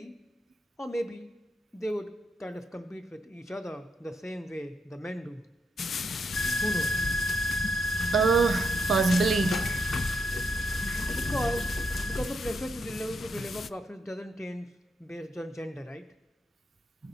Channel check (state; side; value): normal; both; correlation 0.78